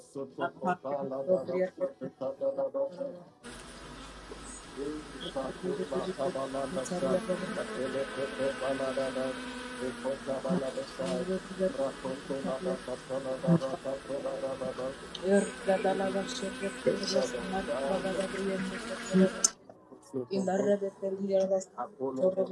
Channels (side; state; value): both; identical; correlation 1.00